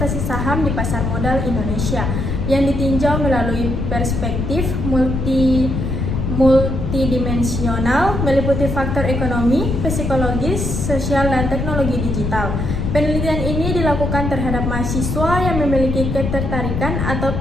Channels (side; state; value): left; noise; rumble, 2 dB below the sound